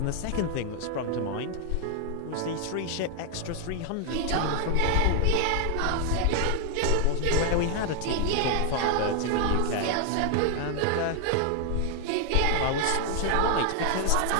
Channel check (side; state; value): both; different; correlation 0.00